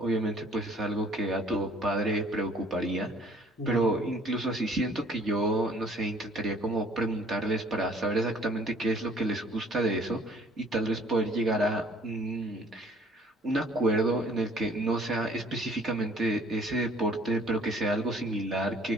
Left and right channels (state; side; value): normal; both; correlation 0.57